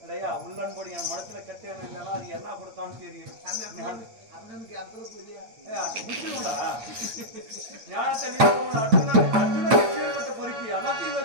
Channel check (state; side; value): late; left; 8.9 ms